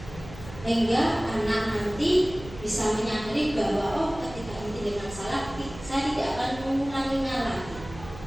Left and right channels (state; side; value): noise; right; hum, 15 dB below the sound